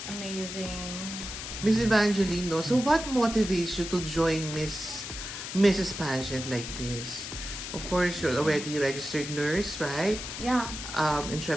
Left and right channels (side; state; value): left; noise; hiss, 8 dB below the sound